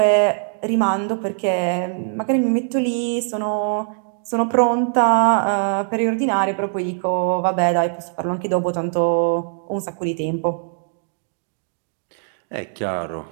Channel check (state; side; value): silent; left; 65 dB below the other